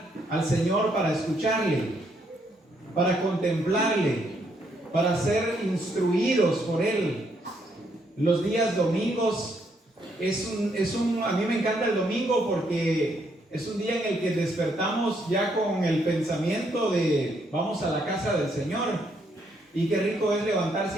al Señor para escucharle, para contemplarle, para ser instruidos por Él. Los días domingos a mí me encanta el domingo porque es un día en el que despertamos ya con el pensamiento de vamos a la casa del Señor. Y qué rico es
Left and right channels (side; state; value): both; normal; correlation 0.73